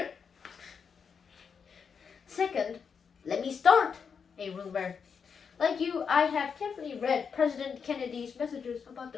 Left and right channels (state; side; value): quieter; right; 6.3 dB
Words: Second, let me start a rumor. Like you, I have carefully read President Kennedy's messages about